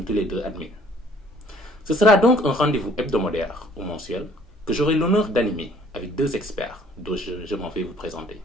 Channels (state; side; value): normal; both; correlation 0.58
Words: tous les deux admis. Ce sera donc un rendez-vous hebdomadaire ou mensuel que j'aurai l'honneur d'animer avec deux experts dont je m'en vais vous présenter.